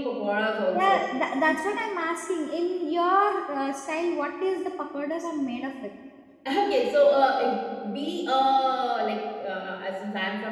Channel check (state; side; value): identical; both; correlation 1.00